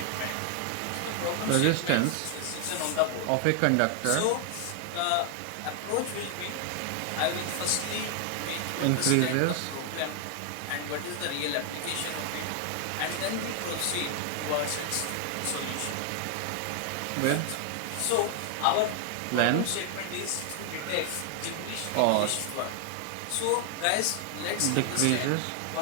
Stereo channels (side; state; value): both; different; correlation 0.00